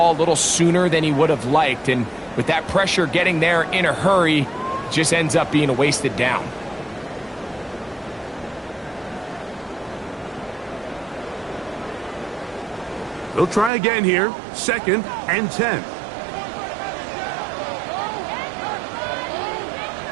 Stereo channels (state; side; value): drops out; left; at 13.7 s